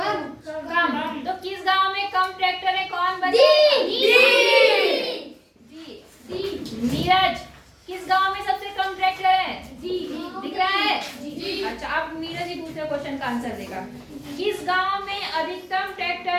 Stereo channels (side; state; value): both; identical; correlation 1.00